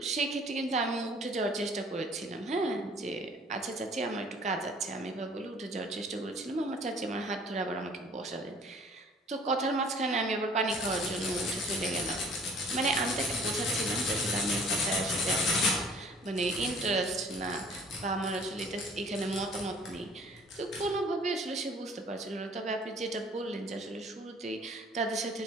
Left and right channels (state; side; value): normal; both; correlation 0.53